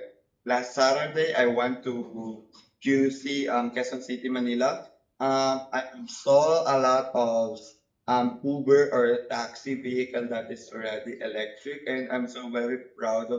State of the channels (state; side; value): identical; both; correlation 1.00